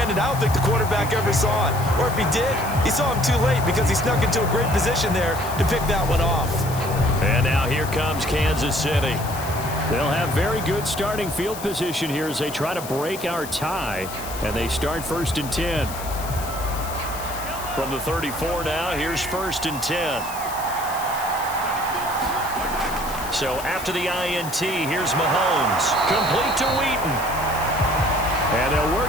I don't think the quarterback ever saw it. Or if he did, he saw him too late because he snuck into a great position there to pick that one off. And now here comes Kansas City. They'll have very good starting field position here as they try to break our tie. And they start 1st and 10. From the 34 now, here's 1st and 10. So after the INT, here's Mahomes. Complete to Wheaton. And they'll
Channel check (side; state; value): left; noise; hiss, 12 dB below the sound